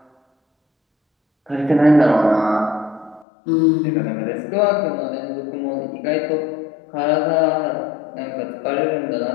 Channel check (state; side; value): drops out; right; at 3.2 s